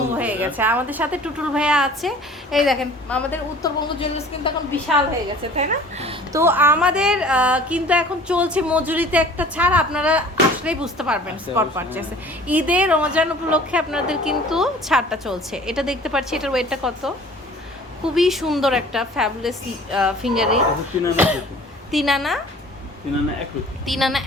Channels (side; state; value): both; normal; correlation 0.47